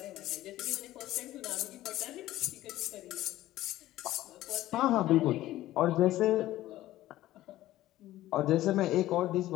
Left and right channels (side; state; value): right; quieter; 15.1 dB